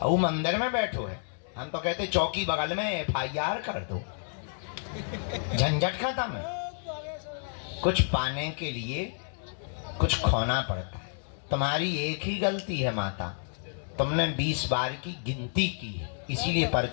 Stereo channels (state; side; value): silent; right; 58 dB below the other